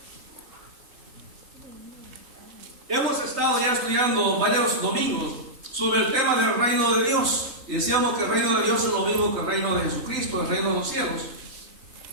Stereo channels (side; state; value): left; late; 3.4 ms